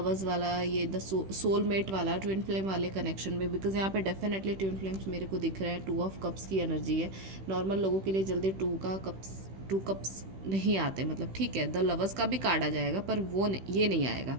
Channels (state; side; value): late; left; 16 ms